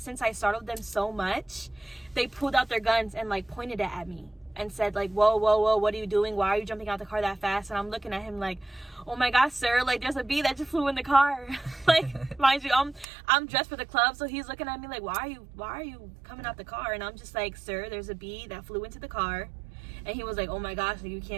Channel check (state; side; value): drops out; left; at 13.1 s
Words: I startled them so much, they pulled out their guns and like pointed it at me and said like, whoa, what are you doing? Why are you jumping out the car that fast? And I'm looking at him like, oh my gosh, sir, like there's a bee that just flew in the car. Like, mind you, I'm dressed for the club, so he's looking at me like, why are you coming out the car? And I'm just like, sir, there's a bee that flew into the car. And he was like, oh my gosh, like, you